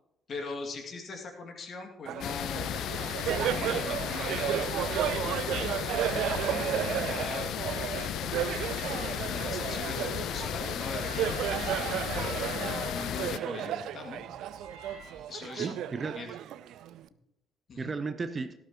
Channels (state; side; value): normal; both; correlation 0.50